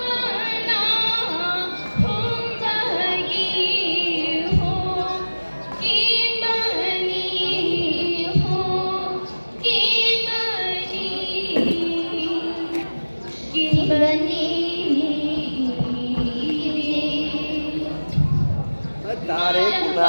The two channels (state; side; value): inverted; both; correlation -1.00